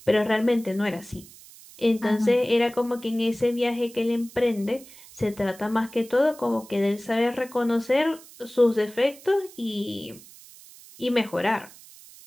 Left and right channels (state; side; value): noise; right; hiss, 21 dB below the sound